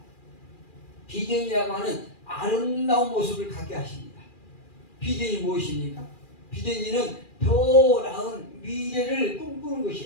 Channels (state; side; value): late; right; 2.4 ms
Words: 비전이라고 하는 아름다운 모습을 갖게 하십니다. 비전이 무엇입니까? 비전이는 더 나은 미래를 꿈꾸는